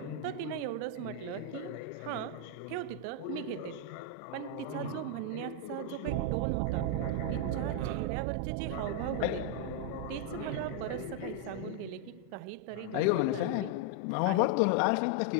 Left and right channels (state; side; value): different; both; correlation 0.00